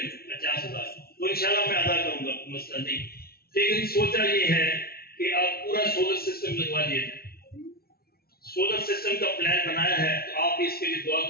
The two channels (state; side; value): late; right; 0.44 ms